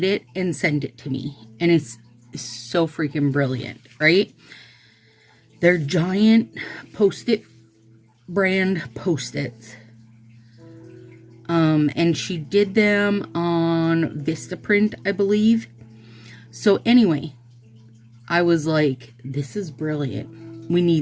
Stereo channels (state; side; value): identical; both; correlation 1.00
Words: it and sent it to me, and it's so freaking brilliant, right? They're giant Post-it brand Post-its. And she did them on Vistaprint, I believe. So anyway, I was like, this is brilliant. We